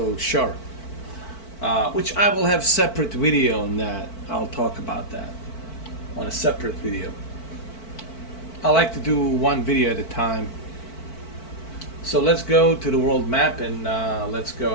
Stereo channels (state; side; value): late; right; 4.5 ms